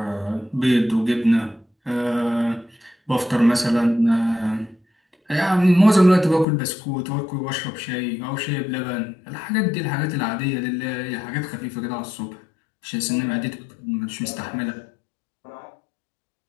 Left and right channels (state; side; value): drops out; right; at 6.5 s